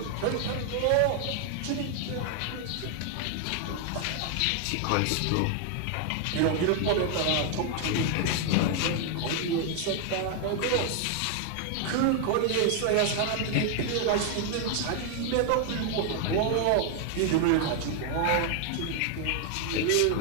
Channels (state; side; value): different; both; correlation 0.00